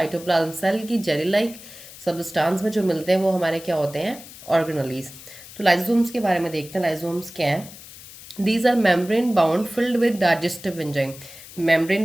सेल की जेली लाइक सबस्टांस में जो मिलते हैं वो हमारे क्या होते हैं? ऑर्गेनलीज। तो लाइजोसोम्स के बारे में देखते हैं। लाइजोसोम्स क्या है? These are membrane bound filled with digestive enzyme.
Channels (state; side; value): noise; left; hiss, 17 dB below the sound